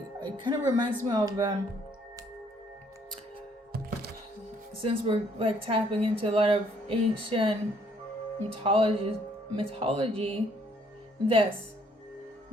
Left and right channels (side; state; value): both; normal; correlation 0.65